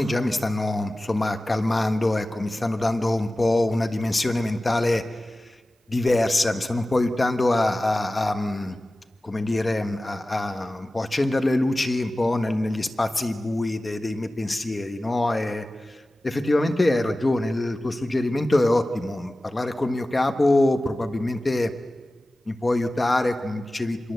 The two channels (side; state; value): both; normal; correlation 0.96